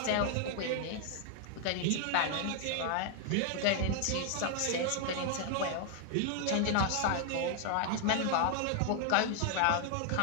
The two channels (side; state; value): both; different; correlation 0.00